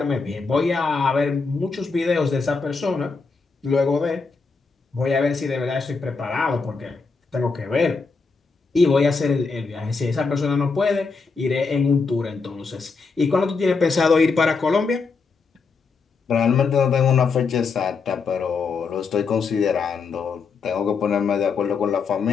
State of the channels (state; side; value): quieter; right; 4.7 dB